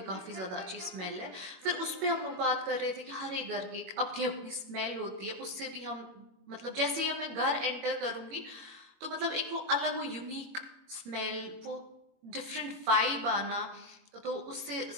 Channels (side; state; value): left; late; 22 ms